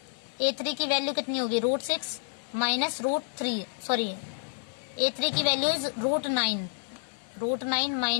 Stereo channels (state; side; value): silent; right; 58 dB below the other